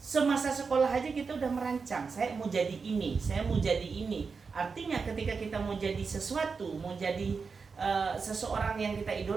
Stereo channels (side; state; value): left; quieter; 5.1 dB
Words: sekolah aja kita udah merancang, saya mau jadi ini, saya mau jadi ini. Artinya ketika kita mau jadi sesuatu, mau jadi seseorang yang kita